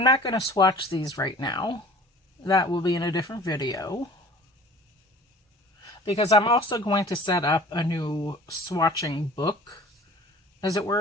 not going to swatch these right now. That will be in a different video, because I'm also going to set up a new swatching book, as it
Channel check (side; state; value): both; normal; correlation 0.46